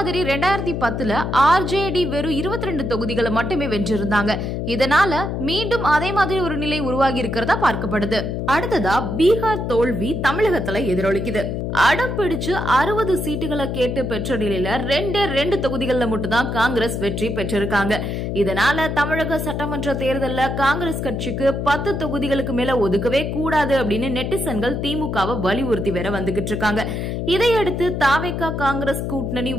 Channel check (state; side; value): noise; left; hum, 3 dB below the sound